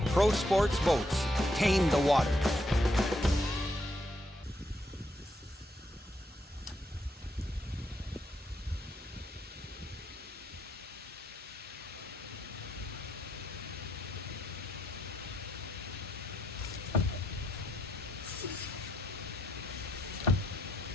Pro Sports Boats, tame the water.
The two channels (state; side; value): normal; both; correlation 0.77